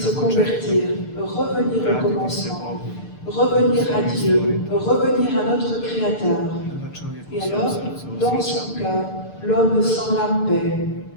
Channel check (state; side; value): late; right; 6.7 ms